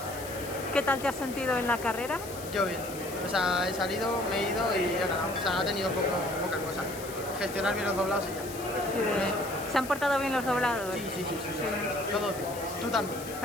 ¿Qué tal te has sentido en la carrera? Yo bien. O sea, he salido, me he ido y he ganado. O sea, ha tenido poca cosa. Gestionar bien los doblados y ya. Sí. ¿Se han portado bien los doblados? Sí. Todo bien. Tú también.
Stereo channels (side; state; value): left; noise; hiss, 13 dB below the sound